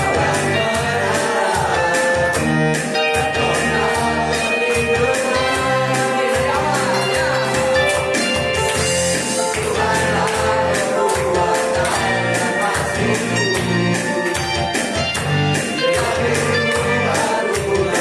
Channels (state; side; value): identical; both; correlation 1.00